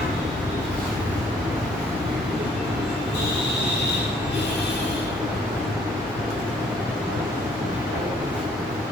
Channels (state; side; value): normal; both; correlation 0.62